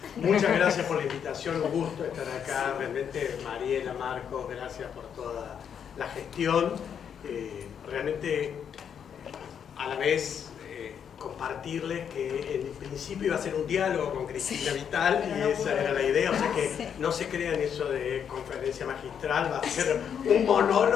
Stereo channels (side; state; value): right; quieter; 8.0 dB